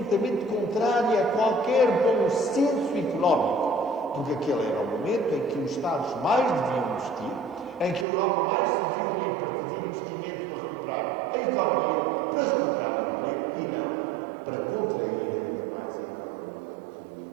contrária a qualquer bom senso económico, porque aquele era o momento em que os Estados mais deviam investir, em que a Europa mais se devia unir para fazer investimento para recuperar a economia, para recuperar o emprego, e não para contrair ainda mais a economia e o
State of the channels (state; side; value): drops out; left; at 8.1 s